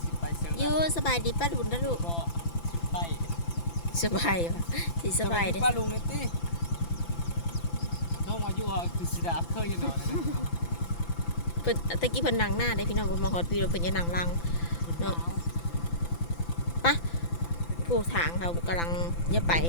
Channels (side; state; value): right; late; 5.9 ms